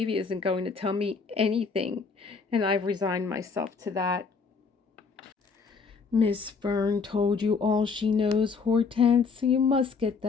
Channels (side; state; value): right; quieter; 5.1 dB